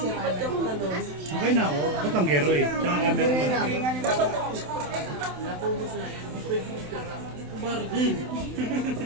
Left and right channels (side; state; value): left; late; 27 ms